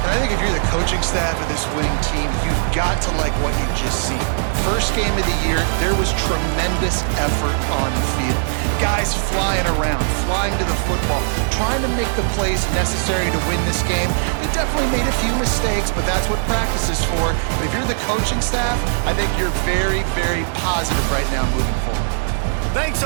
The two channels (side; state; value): left; silent; digital silence